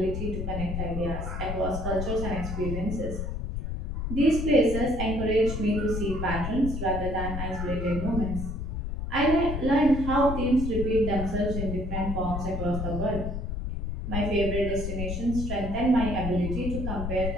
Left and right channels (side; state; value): left; noise; rumble, 4 dB below the sound